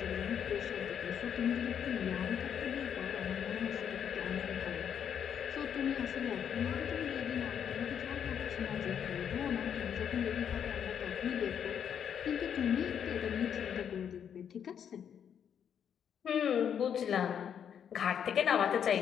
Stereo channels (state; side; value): quieter; right; 8.4 dB